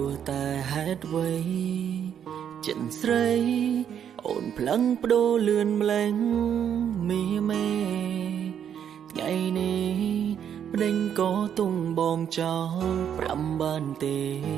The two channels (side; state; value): left; quieter; 8.9 dB